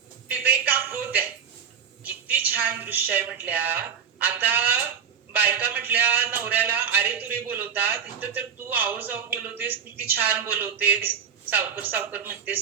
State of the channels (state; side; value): quieter; left; 7.4 dB